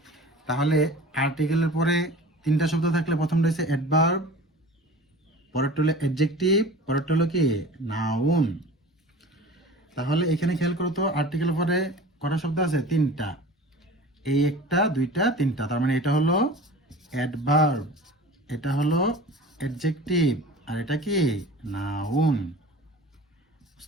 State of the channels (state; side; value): normal; both; correlation 0.40